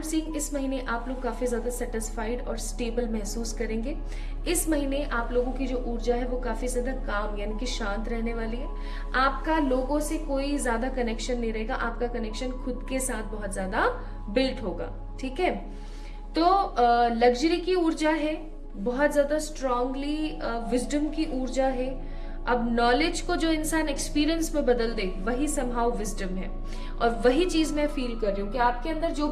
सीइंग इस महीने आप लोग काफी ज्यादा सेटिस्फाइड और स्टेबल महसूस करेंगे। इस महीने आप लोगों की जो ऊर्जा है वो काफी ज्यादा काम यानी कि शांत रहने वाली है। आपका लोगों से कोई ज्यादा कनेक्शन नहीं रहेगा, आपका कनेक्शन खुद के साथ बहुत ज्यादा बिल्ट होगा, ठीक है। तो लग्जरी की ऊर्जा है, बहुत ज्यादा स्ट्रांगली विजडम की ऊर्जा है। अब नॉलेज को जो इंसान एक्सपीरियंस में बदल दे वही समहाउ विजडम है, और वही चीज मैं फील कर रही हूँ कि आपके अंदर जो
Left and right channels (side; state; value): both; identical; correlation 1.00